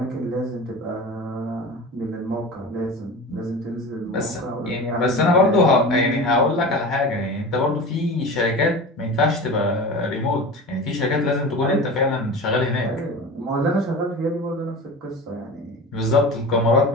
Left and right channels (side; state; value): both; normal; correlation 0.32